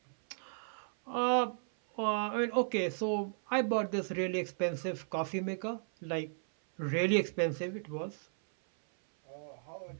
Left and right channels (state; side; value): silent; left; 55 dB below the other